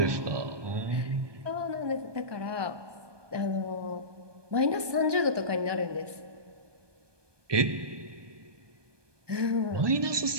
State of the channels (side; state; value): left; late; 1.2 ms